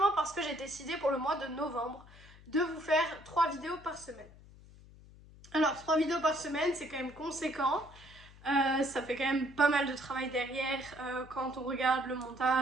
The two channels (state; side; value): noise; left; hum, 21 dB below the sound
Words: parce que j'ai décidé pour le mois de novembre de vous faire 3 vidéos par semaine. Alors 3 vidéos par semaine c'est quand même conséquent. Ça fait quand même pas mal de travail derrière quand on regarde le